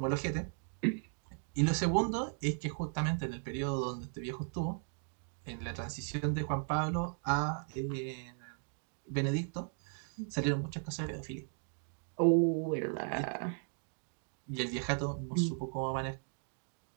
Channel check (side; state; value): left; silent; 53 dB below the other